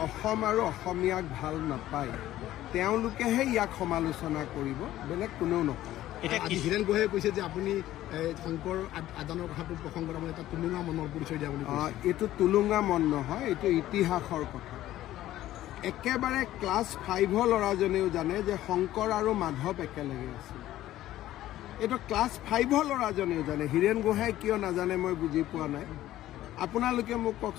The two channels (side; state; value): right; quieter; 14.2 dB